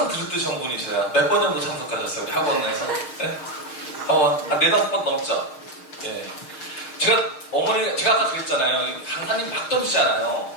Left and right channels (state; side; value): late; right; 6.5 ms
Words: 들었듯이 한 분이세요. 몇 번 정도 참석하셨어요? 우리 학원에서? 네? 한 4-5번 넘죠? 예. 제가 아까 그랬잖아요. 강사님 막 던지잖아요.